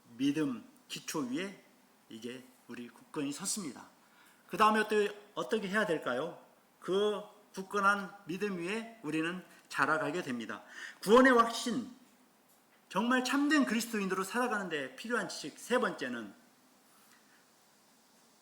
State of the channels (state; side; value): identical; both; correlation 1.00